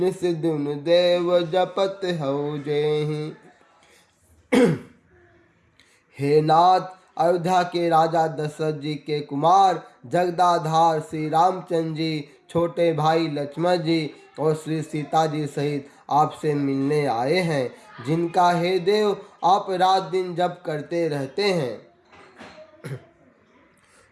दिन देव जपत हऊ जेहि। हे नाथ, अयोध्या के राजा दशरथ जी के कुमार जगदाधार श्री रामचंद्र जी, छोटे भाई लक्ष्मण जी और श्री सीता जी सहित आपसे मिलने आए हैं, जिनका हे देव आप रात दिन जप करते रहते हैं।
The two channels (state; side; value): identical; both; correlation 1.00